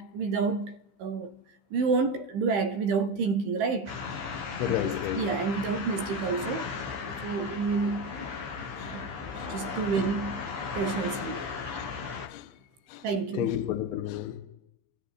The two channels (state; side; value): late; left; 15 ms